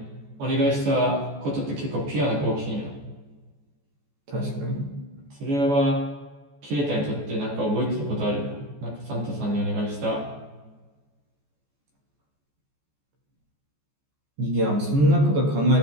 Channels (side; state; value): left; late; 14 ms